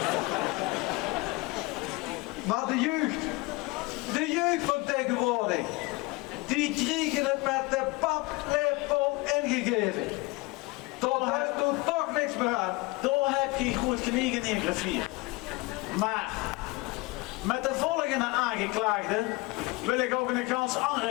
Maar de jeugd van tegenwoordig, die kregen het met de paplepel ingegeven. Tot daar doet toch niks meer aan. Daar heb je goed gelegen in graffier. Maar met de volgende aangeklaagde wil ik ook een ganz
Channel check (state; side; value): quieter; right; 23.8 dB